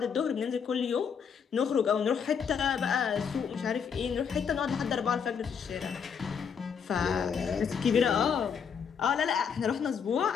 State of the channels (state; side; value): quieter; right; 6.9 dB